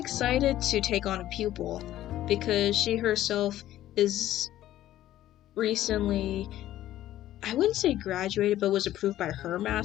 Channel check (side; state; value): right; quieter; 13.5 dB